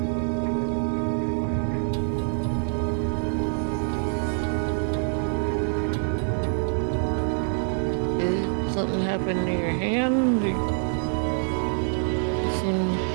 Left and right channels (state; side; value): silent; left; 61 dB below the other